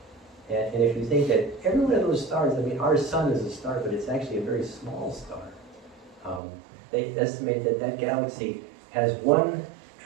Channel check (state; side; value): drops out; left; at 6.4 s